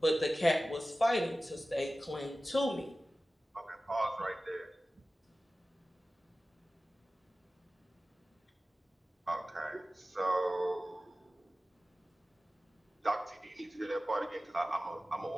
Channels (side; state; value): both; normal; correlation 0.96